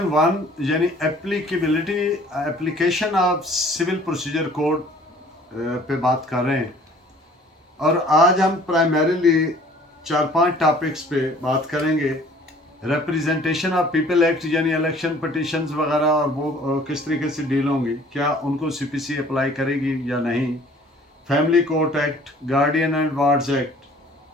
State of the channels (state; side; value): normal; both; correlation 0.53